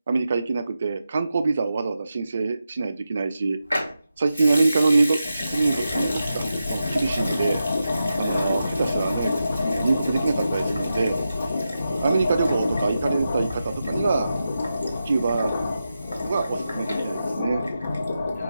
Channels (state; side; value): inverted; both; correlation -0.89